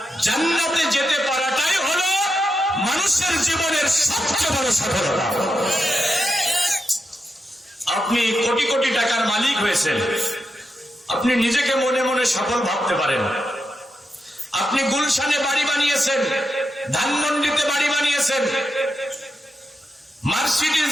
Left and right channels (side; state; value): both; normal; correlation 0.87